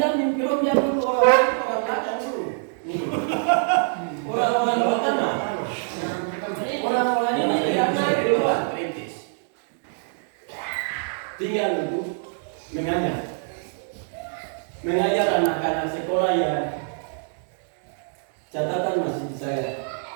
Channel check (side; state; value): left; silent; 62 dB below the other